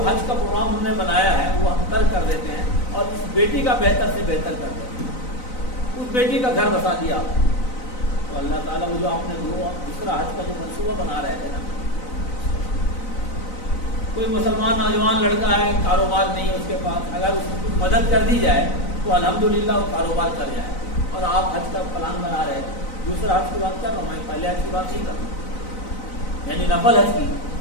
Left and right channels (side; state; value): right; late; 3.9 ms